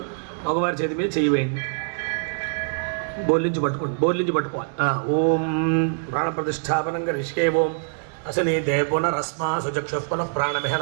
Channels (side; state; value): left; silent; digital silence